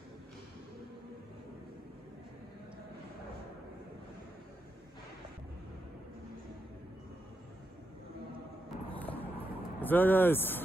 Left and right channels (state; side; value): normal; both; correlation 0.84